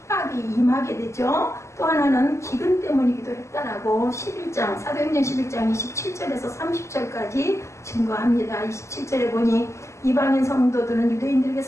임하게 되죠. 또 하나는 기근 때문이기도 했다라고 11장 사도행전 11장 27절에서 30절까지 증거합니다. 27절에 보니 이방인 성도들은 유대인들에게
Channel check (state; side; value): late; right; 0.13 ms